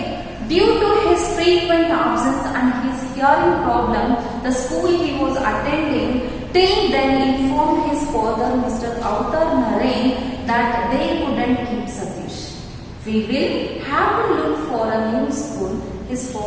Due to his frequent absence and his hearing problem, the school he was attending till then informed his father, Mr. Avtar Narain, that they couldn't keep Satish. We will have to look for a new school, his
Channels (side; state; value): both; identical; correlation 1.00